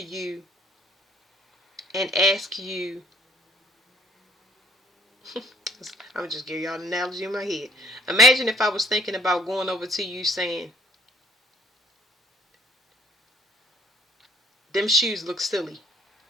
you and ask you, I'm gonna just give y'all an analogy in my head. Imagine if I was thinking about going over to you saying, them shoes look silly.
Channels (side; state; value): both; normal; correlation 0.58